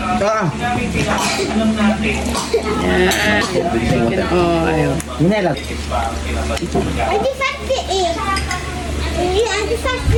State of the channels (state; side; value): identical; both; correlation 1.00